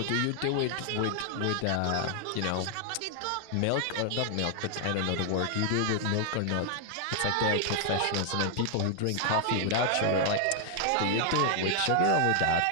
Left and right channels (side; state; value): both; different; correlation 0.00